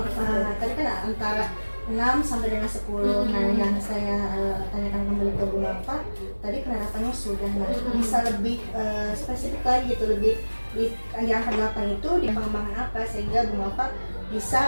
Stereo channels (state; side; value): inverted; both; correlation -1.00